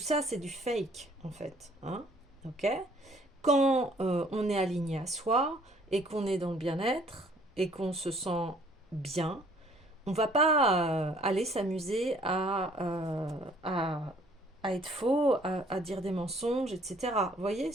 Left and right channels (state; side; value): normal; both; correlation 0.59